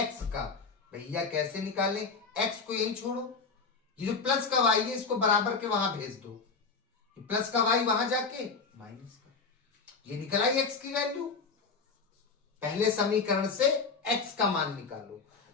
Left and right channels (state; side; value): quieter; right; 4.8 dB